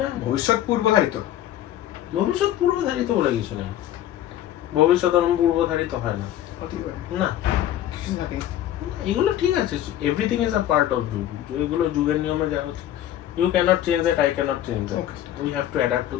ভবিষ্যৎ পূর্বধারিত, ভবিষ্যৎ পূর্বধারিত বলে কিছু নেই, ভবিষ্যৎ পূর্বধারিত হয় না, না এগুলো ঠিক আছে, everything is a part of যুগ, এগুলো যুগের নিয়মে যা হচ্ছে, you can't change that, I can't change that, we have to adapt to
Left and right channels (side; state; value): right; quieter; 12.1 dB